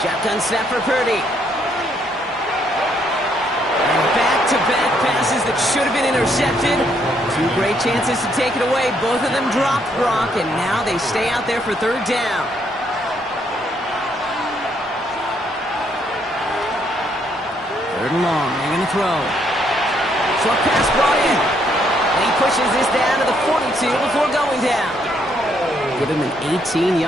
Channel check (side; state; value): both; normal; correlation 0.71